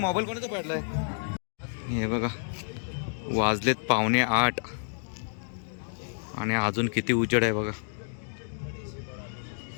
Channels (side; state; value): right; silent; digital silence